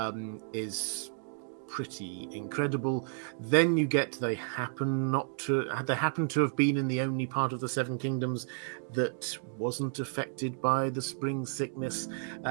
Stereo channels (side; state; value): left; silent; digital silence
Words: is pretty incredible. Then you get they happen to have been in the only part of the Seven Kingdoms that wasn't affected by the spring sickness.